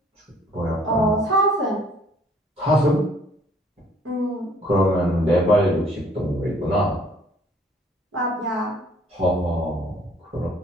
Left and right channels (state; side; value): normal; both; correlation 0.59